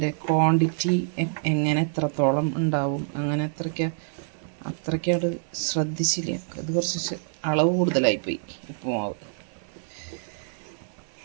ക്വാണ്ടിറ്റി എങ്ങനെ എത്രത്തോളം ഉണ്ടാവും അങ്ങനെ അത്രയ്ക്കത് ശ്രദ്ധിച്ചില്ല. അത് കുറച്ച് അളവ് കൂടുതലായിപ്പോയി ഉപ്പുമാവ്.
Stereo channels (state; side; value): silent; left; digital silence